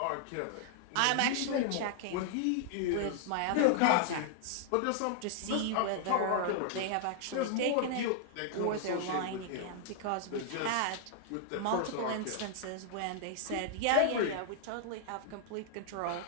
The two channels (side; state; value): both; different; correlation -0.01